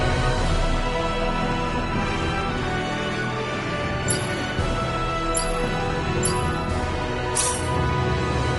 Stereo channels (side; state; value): both; identical; correlation 1.00